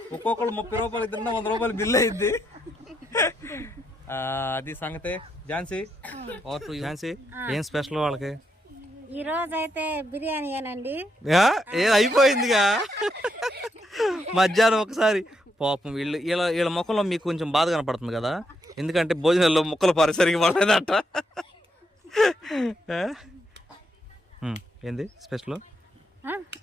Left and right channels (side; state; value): both; normal; correlation 0.79